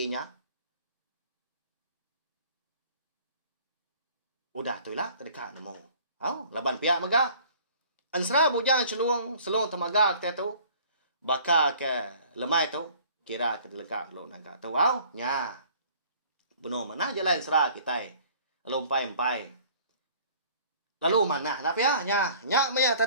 Udah tu lah terdekat nemu. Oh, laban pihak mega. Ansra bujang selung temaga kita tu. Baka ke lemai tu. Kira ke dekat lo nangka tu. Wow, nya. Benar mana jalan ansra kita. Lalu empai. Lalu mana? Tapi ya, nya maya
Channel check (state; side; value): inverted; both; correlation -0.52